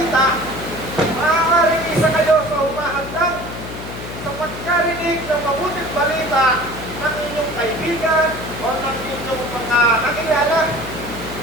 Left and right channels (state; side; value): noise; left; hum, 11 dB below the sound